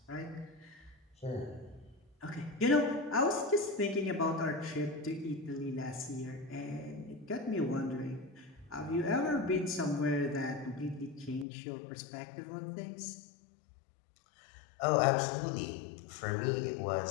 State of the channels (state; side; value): drops out; right; at 11.5 s